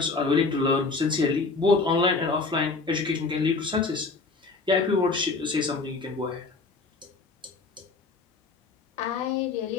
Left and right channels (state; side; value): quieter; right; 4.0 dB